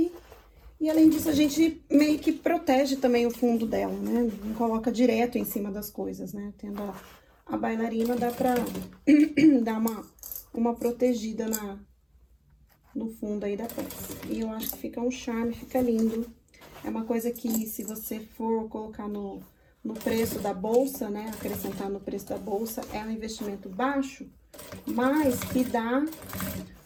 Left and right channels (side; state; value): both; identical; correlation 1.00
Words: E além disso, a gente meio que protege também o fundo dela, né? Não coloca direto em cima das coisas, né? Tendo a bailarina, dá pra dar uma protegida no fundo aí da peça. E eu acho que fica um charme, fica lindo. É uma coisa que, se você for colocar no preço da bolsa, né? Acrescentar no preço da bolsa, é um investimento baixo, mas que dá